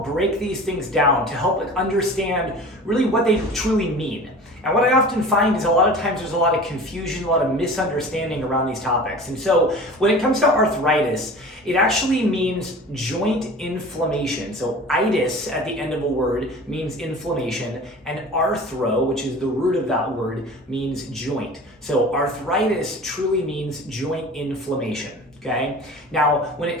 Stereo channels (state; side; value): normal; both; correlation 0.39